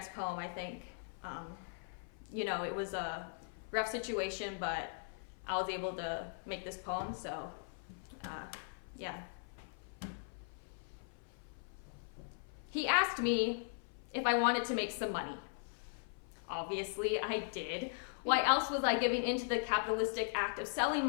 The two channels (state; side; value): silent; right; 52 dB below the other